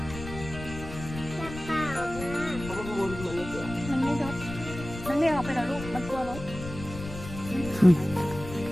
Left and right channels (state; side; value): noise; left; rumble, 11 dB below the sound